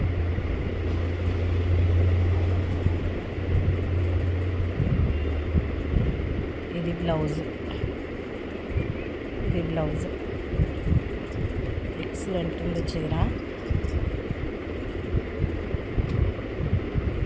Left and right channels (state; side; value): identical; both; correlation 1.00